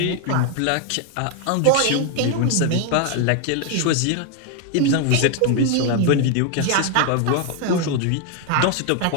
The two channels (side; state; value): both; different; correlation 0.01